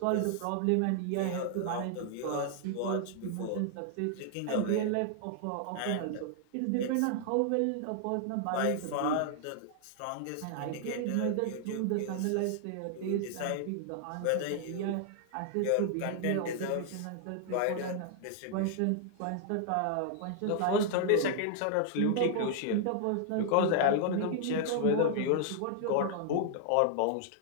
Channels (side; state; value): both; different; correlation -0.01